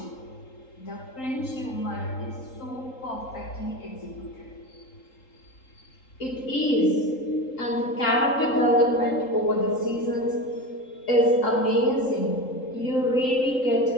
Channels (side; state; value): right; late; 3.8 ms